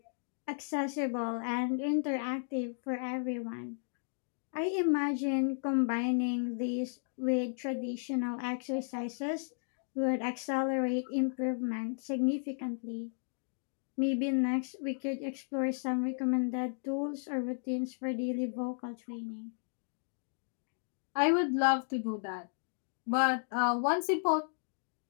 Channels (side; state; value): right; silent; digital silence